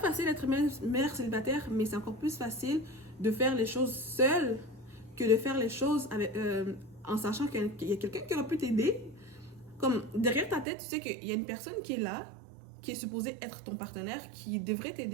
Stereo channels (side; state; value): left; drops out; at 10.7 s